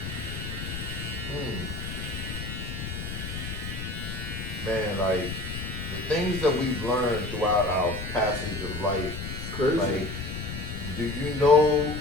Man, like the things that we've learned throughout our passage of life. Crazy. Like, do you know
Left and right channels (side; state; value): left; noise; rumble, 6 dB below the sound